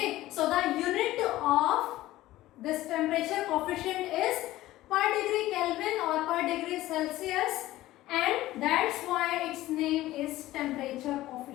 so the unit of this temperature coefficient is per degree Kelvin or per degree Celsius, and that's why its name is temperature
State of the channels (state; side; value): quieter; right; 16.1 dB